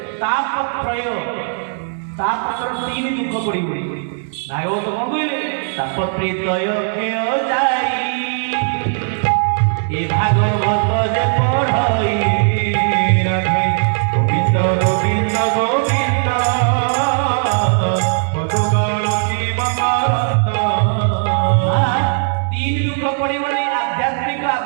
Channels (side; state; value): left; silent; 64 dB below the other